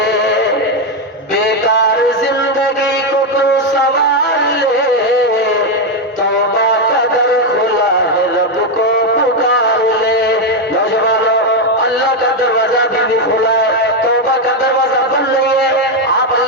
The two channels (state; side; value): normal; both; correlation 0.05